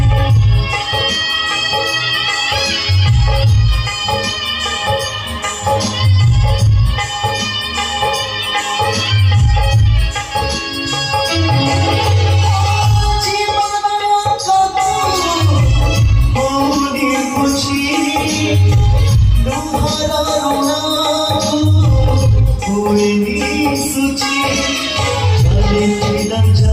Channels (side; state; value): both; identical; correlation 1.00